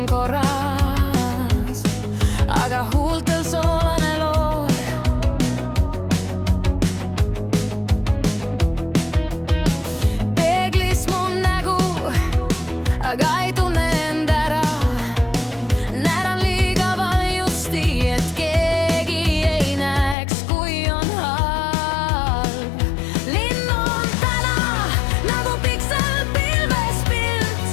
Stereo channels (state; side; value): drops out; right; at 20.2 s